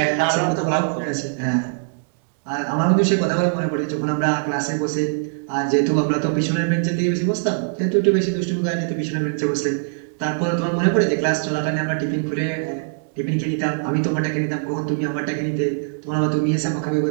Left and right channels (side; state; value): left; silent; 64 dB below the other